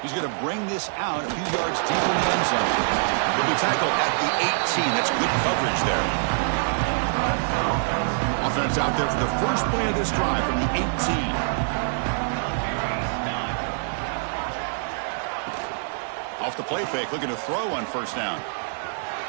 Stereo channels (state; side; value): silent; left; 62 dB below the other